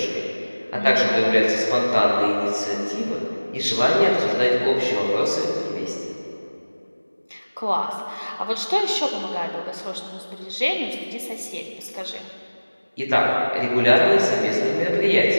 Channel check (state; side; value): inverted; both; correlation -1.00